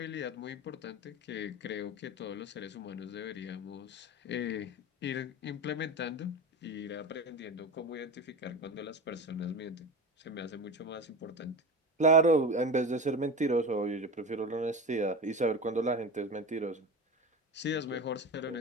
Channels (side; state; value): both; normal; correlation 0.26